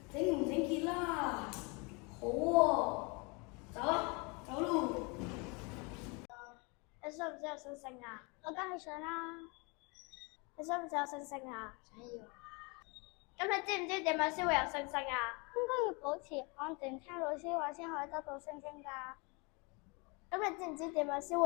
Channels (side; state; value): right; quieter; 30.4 dB